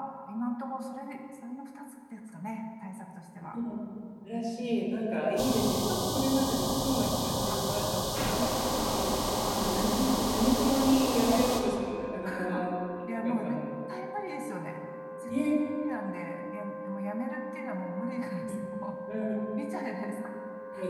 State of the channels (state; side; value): identical; both; correlation 1.00